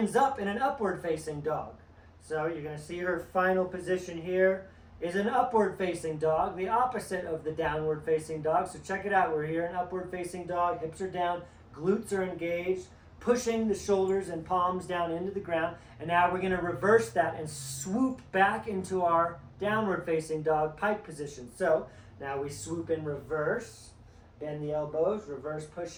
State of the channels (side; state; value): both; identical; correlation 1.00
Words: up in an upward-facing dog. So you're going to see her final position here is an upward-facing dog, the opposite of the downward-facing dog. So check it out. We're here in upward-facing dog. Hips are down, glutes are engaged, pushing the shoulders and palms down into the ground. And now we're going to reverse that and swoop back into our downward-facing dog pike position. So now we swoop in reverse, bend the elbows, reverse